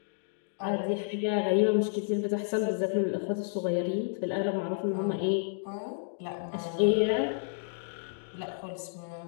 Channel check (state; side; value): silent; right; digital silence